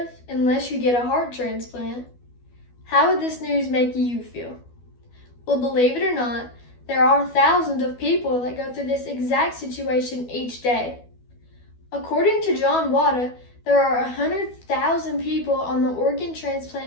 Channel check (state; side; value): late; right; 12 ms